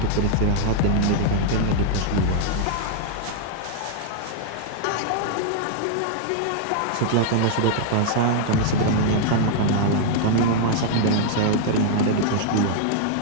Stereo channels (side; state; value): both; different; correlation -0.01